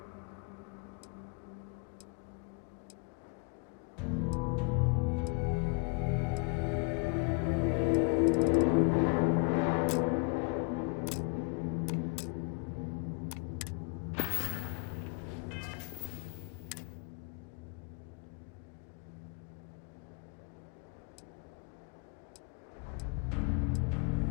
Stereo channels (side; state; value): right; quieter; 32.3 dB